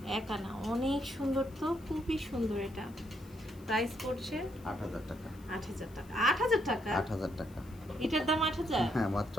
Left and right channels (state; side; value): noise; left; hiss, 26 dB below the sound